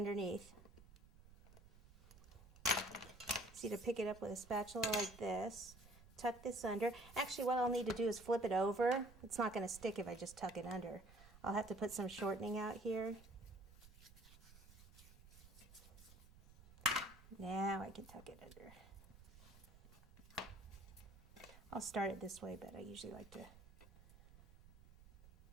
See, to pick it up with a spatula like this. Tuck this under. Actually, what I'll need to do is flip it over. It's not going to stick if I just tuck it under. I'll have to put some shortening out here. Now I can tuck it under. I'll start it this way, but I usually like to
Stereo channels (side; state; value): right; noise; rumble, 21 dB below the sound